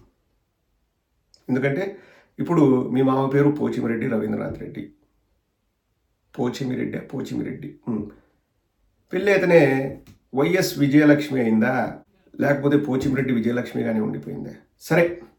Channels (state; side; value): identical; both; correlation 1.00